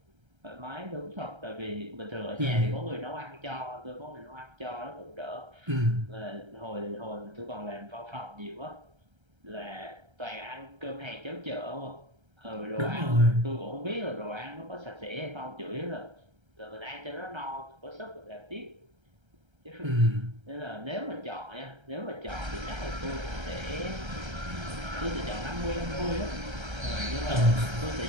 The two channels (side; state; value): left; late; 1.3 ms